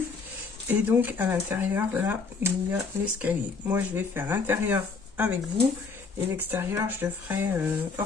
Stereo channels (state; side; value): quieter; right; 4.7 dB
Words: Et donc à l'intérieur, là, il y a l'escalier. Moi, je vais faire l'intérieur avec vous. Et l'extérieur, je le ferai